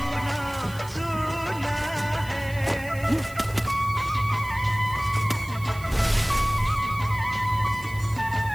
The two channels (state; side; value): noise; right; hiss, 19 dB below the sound